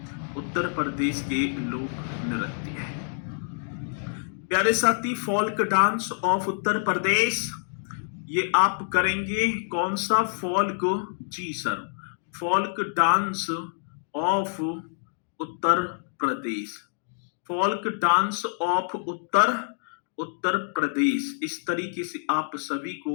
उत्तर प्रदेश के लोक नृत्य। प्यारे साथी, folk dance of Uttar Pradesh, ये आप करेंगे कौन सा फोल्क जी sir? Folk dance of Uttar Pradesh, folk dance of Uttar Pradesh. इस तरीके से आप सभी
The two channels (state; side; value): silent; right; digital silence